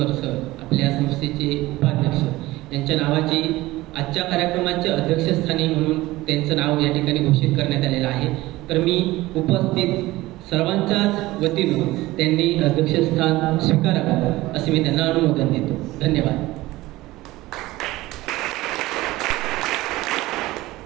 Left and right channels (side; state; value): left; quieter; 18.4 dB